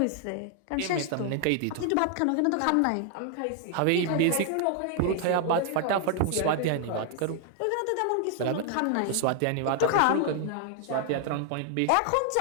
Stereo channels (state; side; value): different; both; correlation 0.00